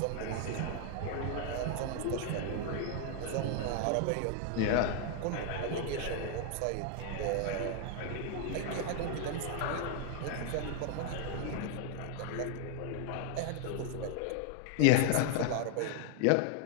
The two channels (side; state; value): both; different; correlation 0.00